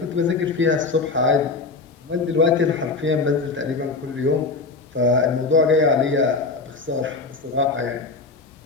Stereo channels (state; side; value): quieter; right; 4.0 dB